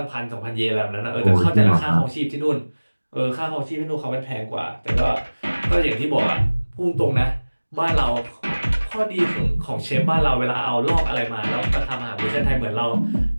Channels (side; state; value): both; inverted; correlation -1.00